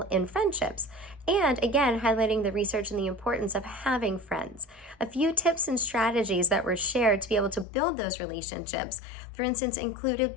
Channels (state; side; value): drops out; right; at 7.7 s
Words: in friendships, and again, highlighting the research and the importance of having friends. A few tips and strategies that were shared to be able to build those relationships, for instance,